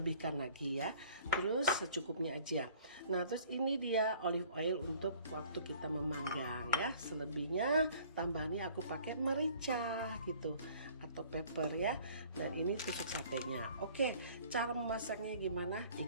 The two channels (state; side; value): inverted; both; correlation -0.53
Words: lagi ya. Terus secukupnya aja. Nah, terus ini dia olive oil untuk waktu kita memanggang ya. Selebihnya tambahannya aku pakai merica gitu atau pepper ya. Dan ini tusuk satenya. Oke, cara memasaknya gimana?